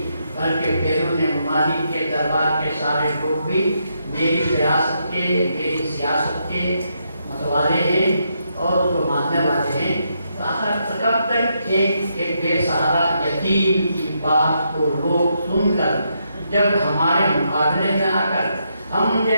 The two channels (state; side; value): inverted; both; correlation -0.79